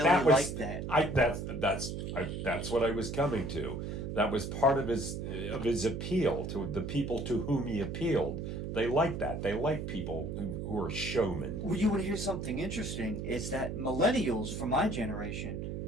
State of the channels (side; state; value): right; noise; hum, 5 dB below the sound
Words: that was like that. That's what I was coming to. That was part of his appeal to the people to whom he appealed. They like that. They like people who are showmen. Well, you want to hear something interesting? Is that millennials from my generation,